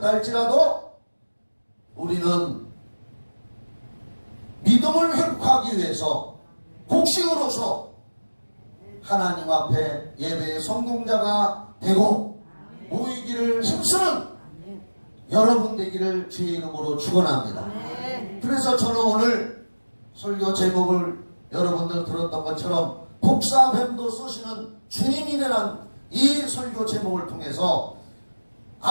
할지라도 우리는 믿음을 회복하기 위해서 곡식으로서 하나님 앞에 예배의 성공자가 되고 모이기를 힘쓰는 여러분 되기를 주의 이름으로 축원합니다. 그래서 저는 오늘 설교 제목을 여러분들 들었던 것처럼 복사뱀도 쏘시는 주님이라는 이 설교 제목을 통해서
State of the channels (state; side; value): inverted; both; correlation -1.00